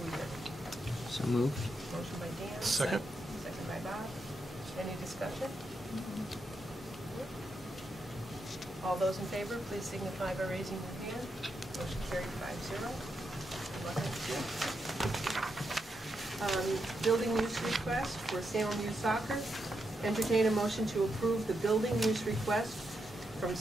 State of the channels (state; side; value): normal; both; correlation 0.83